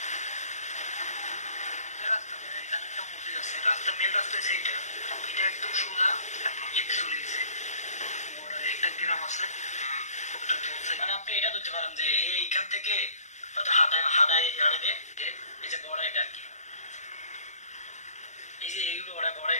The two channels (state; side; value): late; right; 0.34 ms